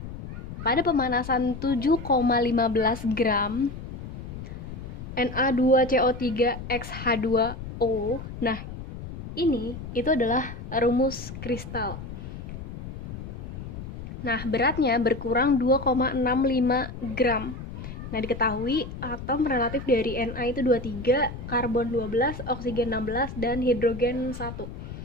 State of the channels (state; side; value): noise; left; rumble, 10 dB below the sound